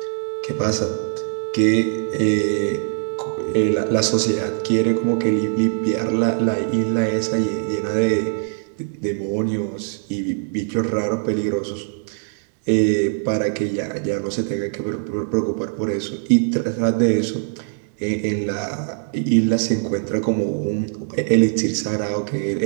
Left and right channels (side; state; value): left; silent; 64 dB below the other